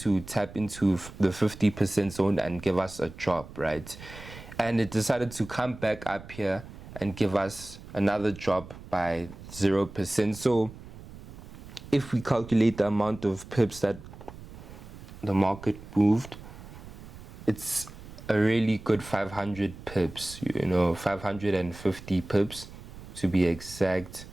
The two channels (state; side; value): noise; right; rumble, 16 dB below the sound